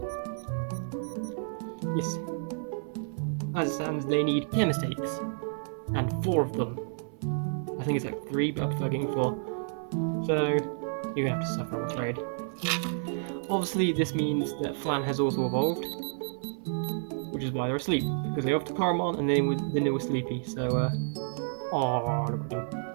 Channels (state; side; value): silent; left; 58 dB below the other